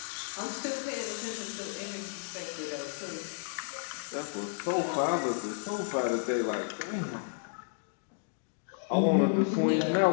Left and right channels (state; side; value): silent; right; digital silence